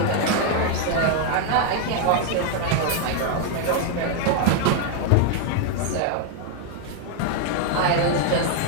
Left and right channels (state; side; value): different; both; correlation 0.00